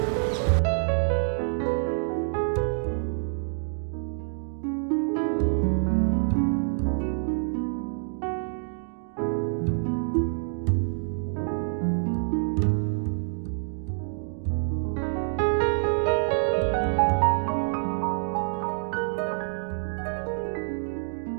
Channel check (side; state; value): left; silent; digital silence